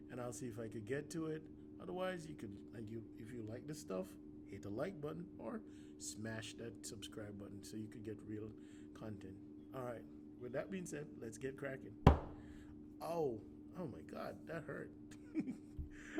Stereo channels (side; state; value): both; identical; correlation 1.00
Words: and I'll see if I could get to it. Otherwise, if you like this stuff, hit the like button or smash that subscribe button so you could get real content. All right, with that being said, let's get cracking. Oh my God, that hurt.